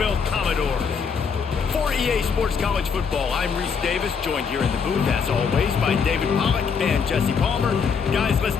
Commodores. For EA Sports College Football, I'm Reese Davis, joined here in the booth, as always, by David Pollack and Jesse Palmer. Guys, let's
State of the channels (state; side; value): quieter; right; 6.1 dB